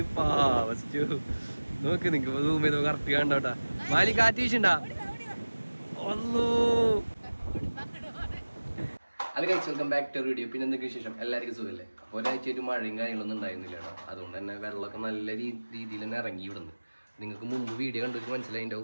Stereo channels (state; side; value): inverted; both; correlation -1.00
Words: നോക്ക്. നിങ്ങക്ക് സൂം ചെയ്ത് കറക്റ്റ് കണ്ടോട്ടാ. മാലി കാറ്റ് വീശുണ്ടാ. അത് കഴിച്ച് വെൽക്കം ബാക്ക് ടു വീഡിയോ. പിന്നെ എന്തൊക്കെ വിശേഷം? എല്ലാവർക്കും സുഖമല്ലേ? ഒരാഴ്ചയായിട്ട് മഴയും കാര്യങ്ങളൊന്നും ഉണ്ടായിരുന്നില്ല കേട്ടോ. അതുകൊണ്ട് തന്നെ വെള്ളമൊക്കെ നല്ല രീതിയിൽ തന്നെ ഇറങ്ങി ഇവിടുന്ന്. നിങ്ങൾക്ക് മുമ്പ് വീഡിയോ കണ്ടിട്ട്